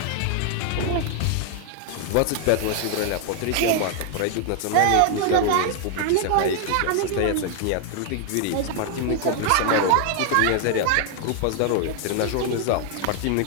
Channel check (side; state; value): both; different; correlation 0.00